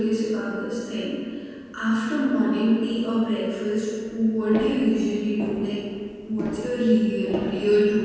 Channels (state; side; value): identical; both; correlation 1.00